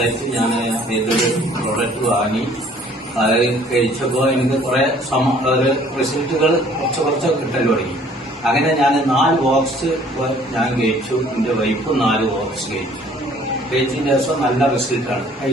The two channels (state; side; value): normal; both; correlation 0.56